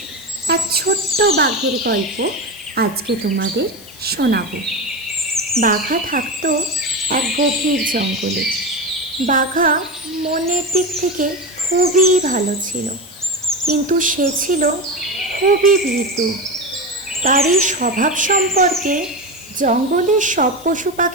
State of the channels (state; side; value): noise; left; hiss, 20 dB below the sound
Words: এক ছোট্ট বাঘের গল্প আজকে তোমাদের শোনাবো। বাঘা থাকতো এক গভীর জঙ্গলে। বাঘা মনের দিক থেকে খুবই ভালো ছিল, কিন্তু সে ছিল খুবই ভীতু। তার এই স্বভাব সম্পর্কে জঙ্গলের সব পশু